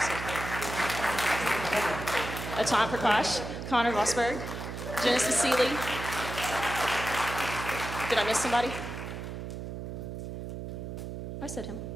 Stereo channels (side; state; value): right; noise; hum, 7 dB below the sound